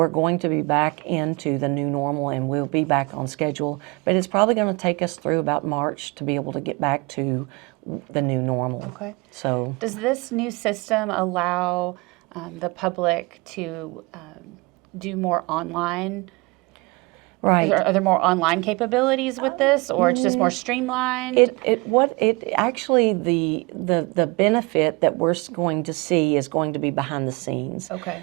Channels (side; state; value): left; quieter; 26.6 dB